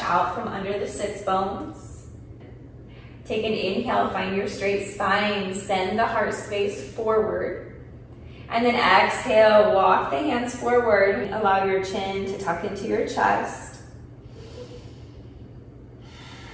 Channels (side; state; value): both; identical; correlation 1.00